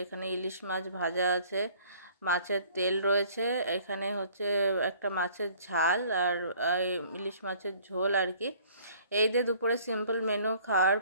এখানে ইলিশ মাছ ভাজা আছে, মাছের তেল রয়েছে, এখানে হচ্ছে একটা মাছের ঝাল আর ইলিশ মাছের ঝোল আর কি। এই যে দুপুরে সিম্পল মেনু খাওয়ার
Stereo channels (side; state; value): both; inverted; correlation -0.55